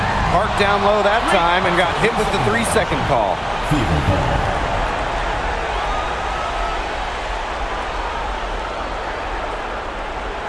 down low that time and got hit with the 3-second call.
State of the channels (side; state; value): both; identical; correlation 1.00